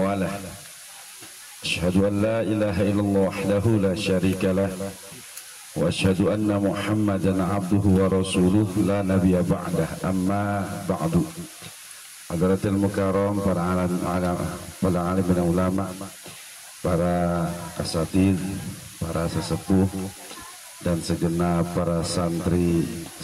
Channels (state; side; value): identical; both; correlation 1.00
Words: Asyhadu an la ilaha illallah wahdahu la syarika lah wa asyhadu anna Muhammadan abduhu wa rasuluh la nabiyya ba'dah, amma ba'du. Hadratil mukarram, para alim dan ulama, para asatidz, para sesepuh, dan segenap para santri